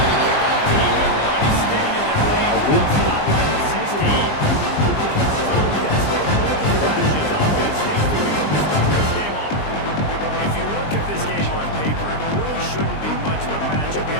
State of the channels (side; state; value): right; late; 20 ms